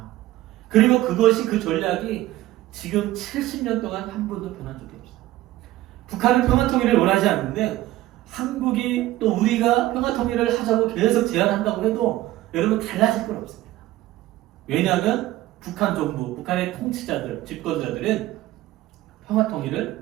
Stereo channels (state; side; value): quieter; left; 15.9 dB